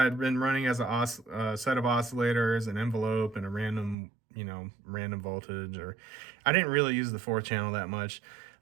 had been running as a set of oscillators, an envelope, and a random voltage. Or I didn't really use the 4-channel that much.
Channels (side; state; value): left; drops out; at 4.0 s